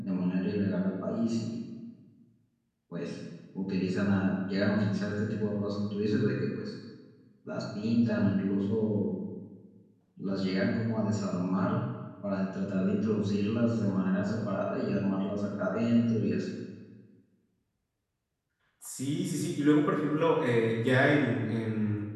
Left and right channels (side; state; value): both; identical; correlation 1.00